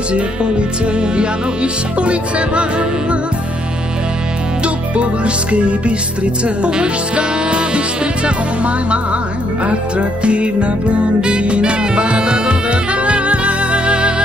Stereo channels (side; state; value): both; normal; correlation 0.72